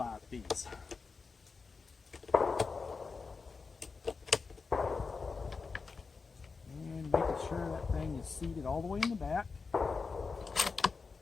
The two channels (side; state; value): right; quieter; 4.7 dB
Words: piece. And making sure that thing is seated all the way in the back.